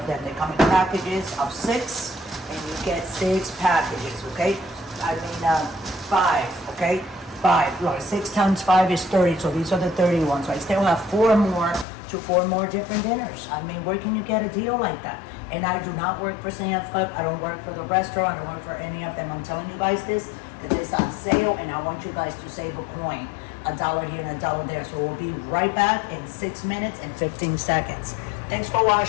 them. They come in packages of 6, and you get 6 packages. Okay, I mean 5. Okay. 5. Look, 6 times 5 is 30, so these are the 30 ones. So I still have 4 more different dinners. I mean, where can you get a deal like that? And I do not work for Sam's Club. I don't work for the restaurant. I don't work for any of them. I'm telling you guys this because it's on sale, and I want you guys to save a coin. $1 here and $1 there. So we'll be right back in 6 minutes and 15 seconds. Thanks for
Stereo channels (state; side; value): drops out; right; at 11.9 s